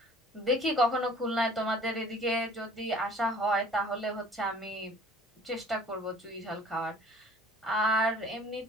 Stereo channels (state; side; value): normal; both; correlation 0.51